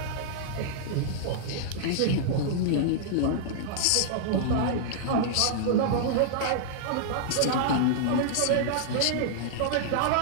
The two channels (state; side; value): different; both; correlation -0.02